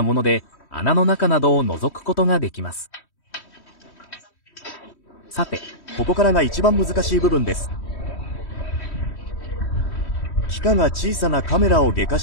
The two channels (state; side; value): late; right; 3.1 ms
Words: もので、穴の中などを覗くことができます。さて、ここからが一番難しい部分です。機械が小さなカメラを外科